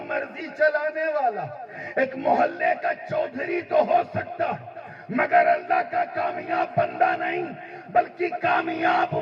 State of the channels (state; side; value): identical; both; correlation 1.00